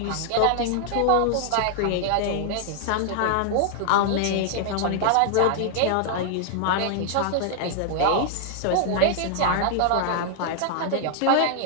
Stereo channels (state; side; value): different; both; correlation 0.00